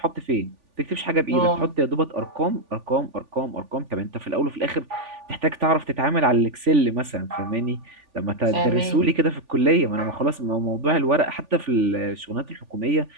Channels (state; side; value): late; left; 3.4 ms